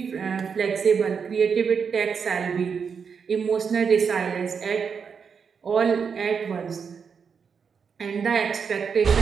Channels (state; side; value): quieter; left; 6.2 dB